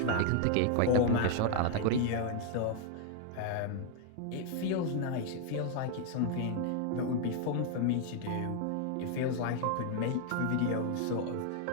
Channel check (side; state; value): both; different; correlation 0.00